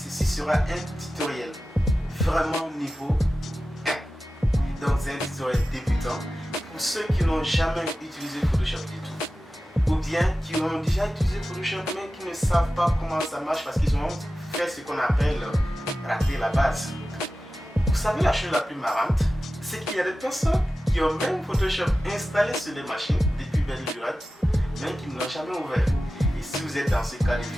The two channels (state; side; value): normal; both; correlation 0.94